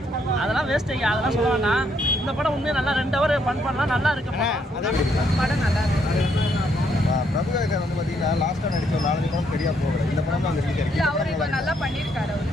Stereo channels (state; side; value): normal; both; correlation 0.73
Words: அதெல்லாம் வேஸ்ட்டுங்க, அதெல்லாம் சொல்லுவாங்கன்னா இந்த படம் உண்மையாக நல்லா 2 ஹவர் பண்ணலாம், நல்லா இருக்கு படம் நல்லா இருக்கு. பிரபுதேவர் வந்து பார்த்தீங்கன்னா லாஸ்ட்டாக நடிச்ச 4 படம் சரியாக போகல. இந்த படம் தான் இல்லை, அவர் இப்போ நல்லா பண்ணியிருக்காரு.